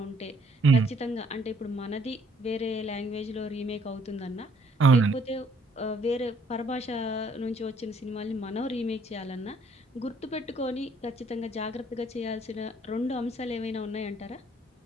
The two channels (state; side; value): normal; both; correlation 0.64